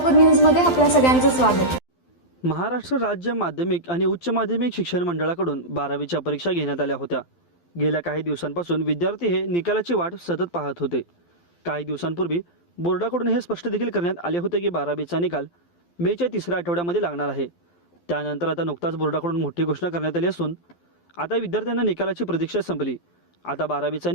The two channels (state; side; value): late; right; 12 ms